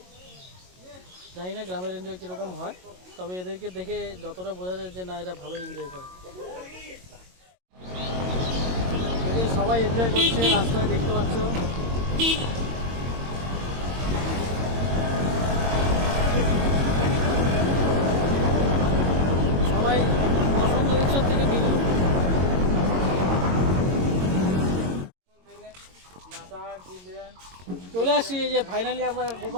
জানি না গ্রামের এনজয় কীরকম হয়, তবে এদেরকে দেখে যতটা বোঝা যায় যে না এরা ভালোই এনজয় করে। সবাই এনজয় করছে, রাস্তায় দেখতে পাচ্ছ। সবাই বসন্ত উৎসব থেকে ফিরল। চলে আসছি, এই যে ফাইনালি আমরা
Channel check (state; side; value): late; left; 22 ms